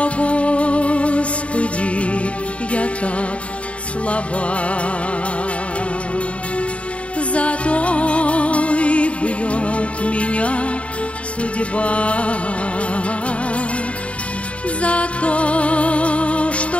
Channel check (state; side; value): late; right; 0.063 ms